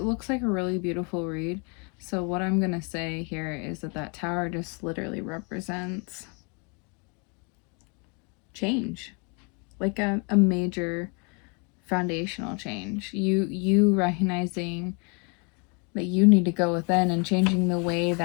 looks like a really beautiful read. So what I'm going to say here is that tower just literally represents change. Like a major foundational change. You recognizing that you need to go within and changing the way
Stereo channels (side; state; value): right; quieter; 33.9 dB